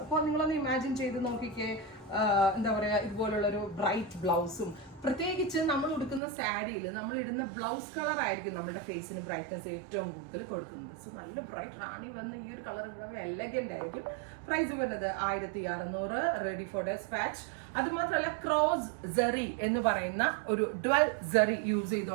അപ്പോൾ നിങ്ങളൊന്ന് ഇമാജിൻ ചെയ്ത് നോക്കിക്കേ, എന്താ പറയുക, ഇതുപോലുള്ളൊരു ബ്രൈറ്റ് ബ്ലൗസും പ്രത്യേകിച്ച് നമ്മൾ ഉടുക്കുന്ന സാരിയിൽ നമ്മൾ ഇടുന്ന ബ്ലൗസ് കളർ ആയിരിക്കും നമ്മുടെ ഫേസിന് ബ്രൈറ്റ്നസ് ഏറ്റവും കൂടുതൽ കൊടുക്കുന്നത്. സോ നല്ല ബ്രൈറ്റ് റാണി വന്ന് ഈ ഒരു കളർ ഇവിടെ എലഗന്റ് ആയിരിക്കും. പ്രൈസ് വരുന്നത് 1600, റെഡി ഫോർ ഡെസ്പാച്ച്. അത് മാത്രമല്ല ക്രോസ് സെറി എന്ന് പറയുന്ന ഒരു ഡ്വൽ സെറി യൂസ്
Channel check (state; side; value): drops out; left; at 6.2 s